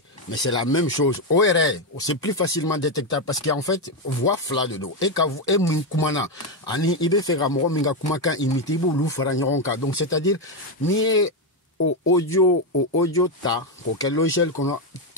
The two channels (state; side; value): normal; both; correlation 0.07